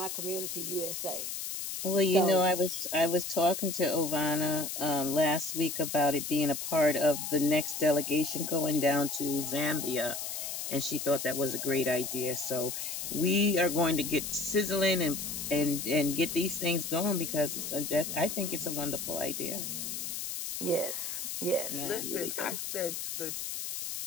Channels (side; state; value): left; noise; hiss, 5 dB below the sound